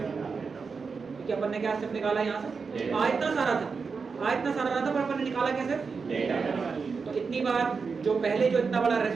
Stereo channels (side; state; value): left; quieter; 5.1 dB